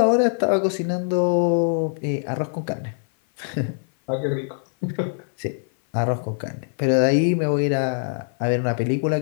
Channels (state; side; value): silent; right; 56 dB below the other